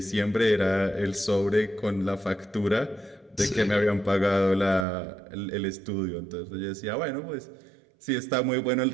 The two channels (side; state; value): left; drops out; at 4.9 s